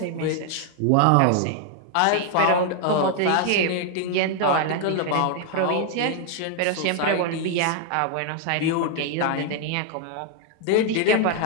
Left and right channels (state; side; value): different; both; correlation 0.00